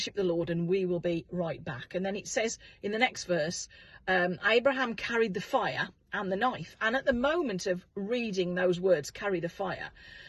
the Lord and we will be right back. And then it says in the next verse, Abraham carried the fire and the knife. And at the moment of reading those words, carry the fire,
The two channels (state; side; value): identical; both; correlation 1.00